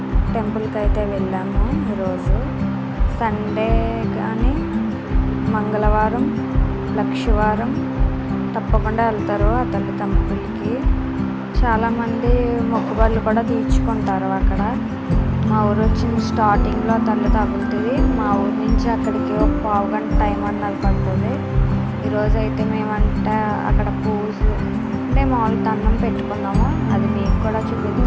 టెంపుల్కి అయితే వెళ్ళాము. ఈరోజు సండే కానీ మంగళవారం లక్షవారం తప్పకుండా వెళ్తారు ఆ తల్లి టెంపుల్కి. చాలామంది మొక్కుబళ్ళు కూడా తీర్చుకుంటారు అక్కడ. మా ఊరు వచ్చిన స్టార్టింగ్లో తల్లి తగులుతుంది. మా ఊరు నుంచి అక్కడికి ఒక పావు గంట టైం అన్నది పడుతుంది. ఈరోజు అయితే మేమంటే అక్కడ పూజ అంటే మామూలు దండం పెట్టుకున్నాము. అది మీకు కూడా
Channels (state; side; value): identical; both; correlation 1.00